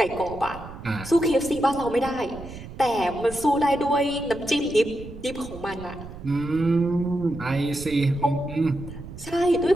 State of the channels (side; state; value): right; noise; rumble, 14 dB below the sound